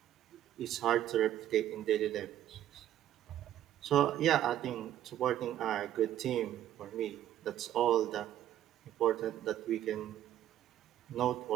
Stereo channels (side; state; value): left; quieter; 11.9 dB